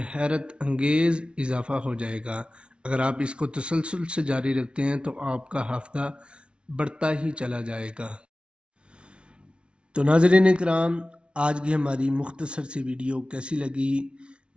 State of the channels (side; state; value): left; late; 0.058 ms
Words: حیرت انگیز اضافہ ہو جائے گا۔ اگر آپ اس کو تسلسل سے جاری رکھتے ہیں تو آپ کا حافظہ بڑھتا ہی چلا جائے گا۔ تو ناظرین اکرام، آج کی ہماری مختصر سی ویڈیو کیسی لگی؟